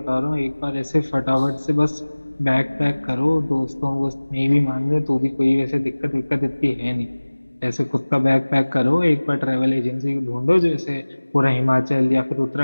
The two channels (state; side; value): inverted; both; correlation -1.00